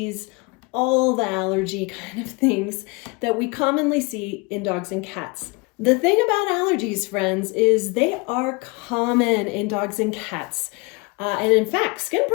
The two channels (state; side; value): quieter; right; 28.1 dB